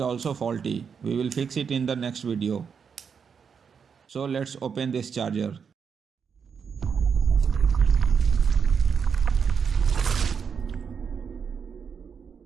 faulty. We will fix it in the next video. So let's open this charger.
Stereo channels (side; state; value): left; quieter; 6.5 dB